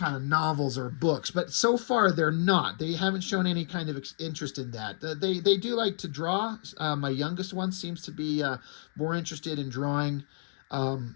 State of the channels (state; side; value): silent; right; digital silence